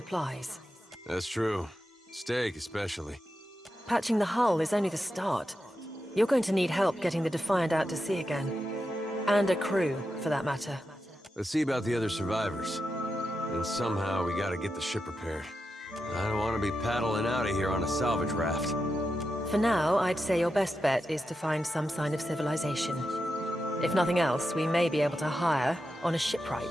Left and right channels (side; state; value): both; normal; correlation 0.88